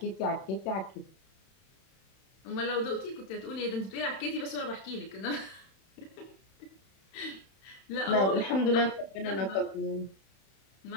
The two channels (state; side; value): late; right; 31 ms